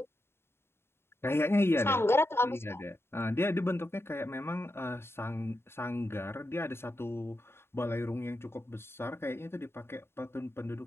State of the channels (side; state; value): right; late; 0.12 ms